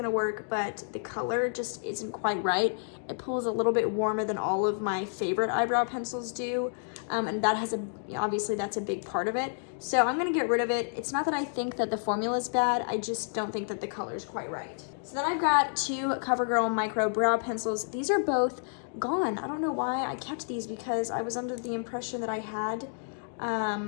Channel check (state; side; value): silent; right; digital silence